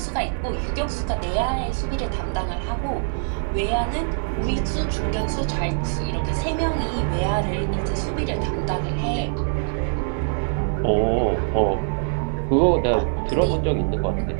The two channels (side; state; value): left; silent; digital silence